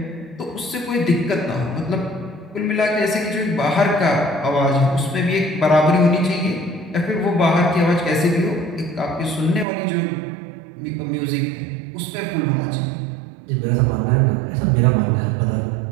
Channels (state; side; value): drops out; left; at 9.7 s